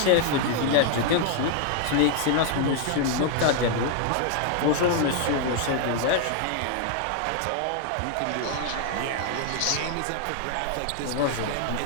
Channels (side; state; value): both; different; correlation 0.00